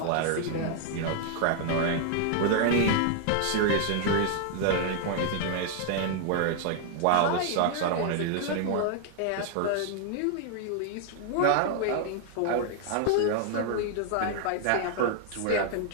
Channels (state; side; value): different; both; correlation 0.00